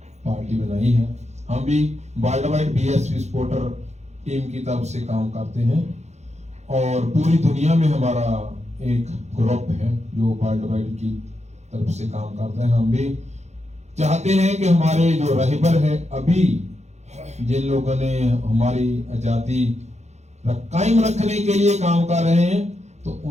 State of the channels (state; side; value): late; left; 0.33 ms